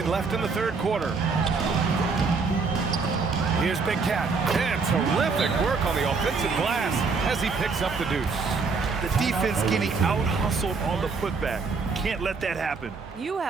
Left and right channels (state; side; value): quieter; left; 4.6 dB